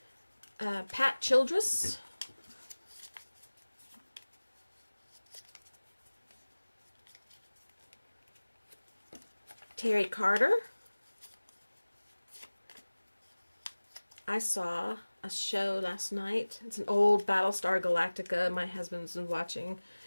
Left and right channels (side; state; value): both; inverted; correlation -1.00